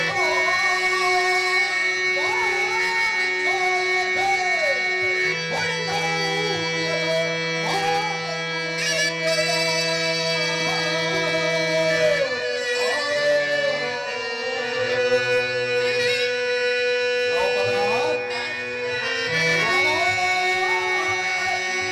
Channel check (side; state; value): both; identical; correlation 1.00